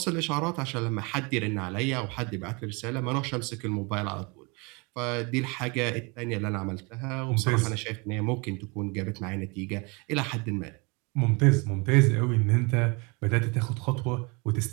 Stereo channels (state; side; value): quieter; left; 29.3 dB